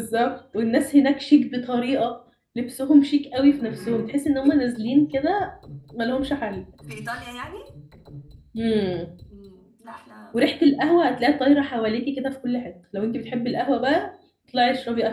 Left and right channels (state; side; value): identical; both; correlation 1.00